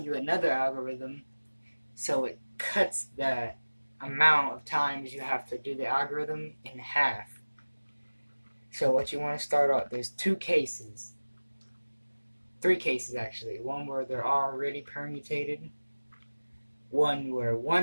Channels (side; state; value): both; inverted; correlation -1.00